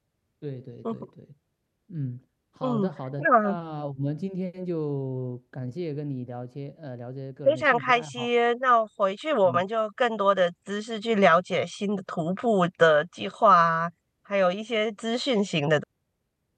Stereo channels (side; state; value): both; identical; correlation 1.00